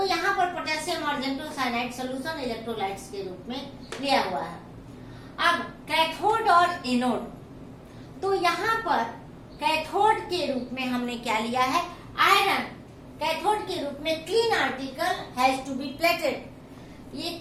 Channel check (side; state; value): both; identical; correlation 1.00